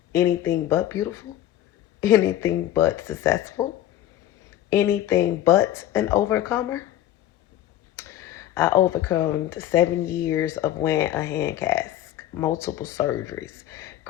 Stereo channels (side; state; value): right; quieter; 12.5 dB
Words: anything but beautiful, anything but successful, anything but an overcomer? I overcome 7 years of wearing a hand cast, multiple surgeries,